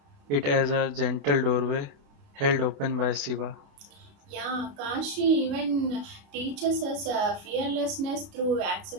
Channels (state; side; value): late; left; 29 ms